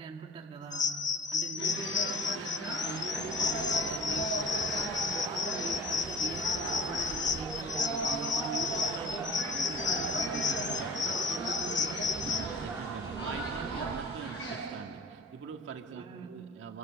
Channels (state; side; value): normal; both; correlation 0.41